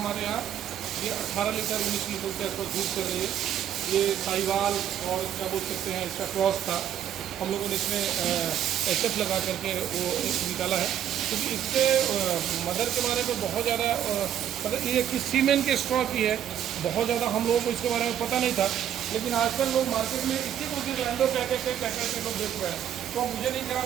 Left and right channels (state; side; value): quieter; left; 10.2 dB